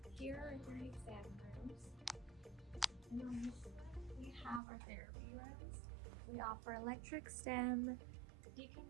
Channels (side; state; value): left; drops out; at 4.6 s